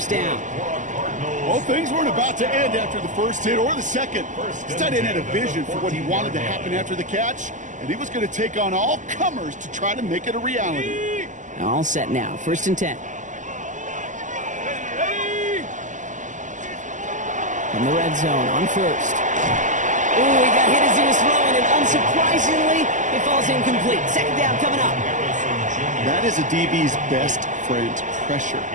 down. Well, things weren't about to end after the first hit or the second. This tight end had a vision for what he wanted to happen after the catch, and he was going to take on all comers to try to make it a reality. All set now, 1st and 10. From the red zone on 1st. Ooh, he got hit as he was throwing, and unsurprisingly, it falls incomplete. 2nd down coming up. That is a DB's best friend, pressure.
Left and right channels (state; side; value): late; left; 0.37 ms